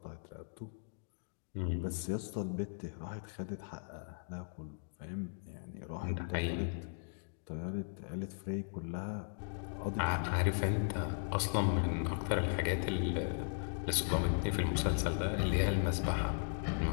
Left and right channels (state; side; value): silent; right; digital silence